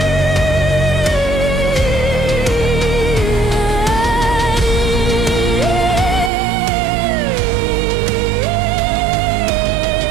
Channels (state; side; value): drops out; left; at 6.3 s